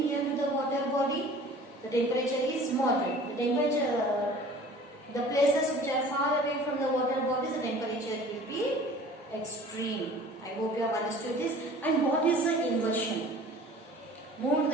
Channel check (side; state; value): both; normal; correlation 0.46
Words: to the water body, the temperature is moderate. The places which are far away from the water bodies, the temperature will be extreme. I hope you have understood this. And what is the inversion? Move to